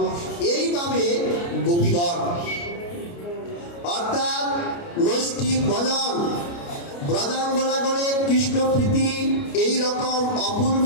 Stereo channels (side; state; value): right; late; 29 ms